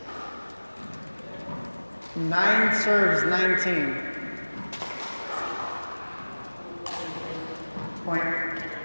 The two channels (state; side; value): inverted; both; correlation -1.00